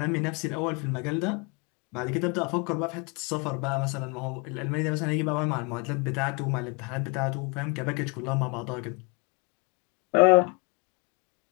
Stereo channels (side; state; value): right; quieter; 31.9 dB